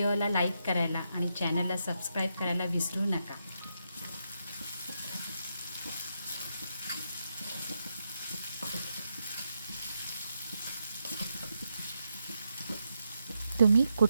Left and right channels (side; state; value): both; inverted; correlation -0.83